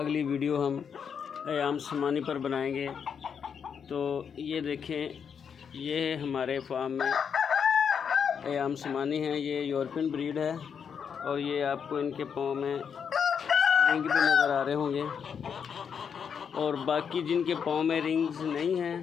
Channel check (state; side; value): quieter; right; 7.1 dB